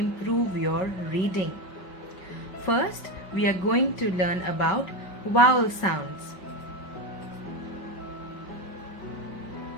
your reading. First, we are going to learn about vowel sounds.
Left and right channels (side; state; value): right; late; 5.2 ms